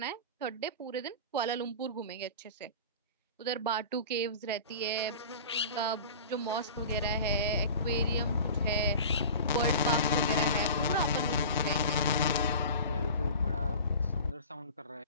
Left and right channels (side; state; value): both; inverted; correlation -0.37